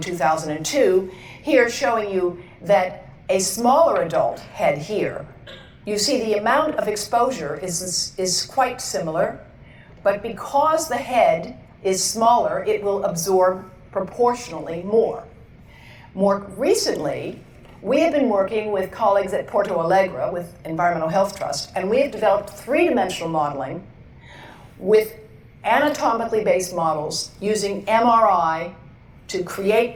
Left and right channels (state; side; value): identical; both; correlation 1.00